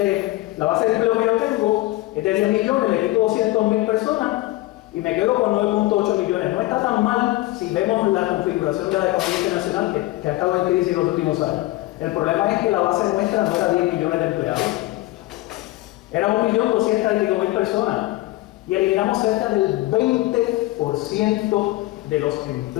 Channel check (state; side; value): quieter; right; 18.5 dB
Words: que yo tengo es de 10 millones, le quito 200.000 personas y me quedo con 9.8 millones. No está tan mal si vemos la configuración de la economía internacional que ha estado en crisis en los últimos años. El problema es que la base nuestra no era 10 millones de empleados, era 1.200.000 personas. Y eliminamos cerca del 20% de los